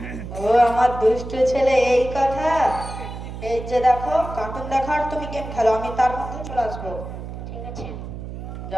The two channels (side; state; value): right; noise; hum, 9 dB below the sound